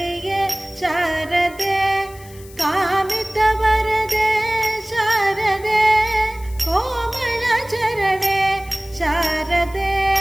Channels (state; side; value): noise; left; hiss, 22 dB below the sound